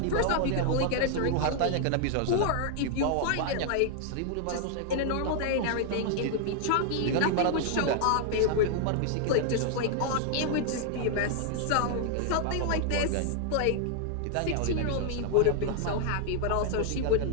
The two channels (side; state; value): both; different; correlation 0.00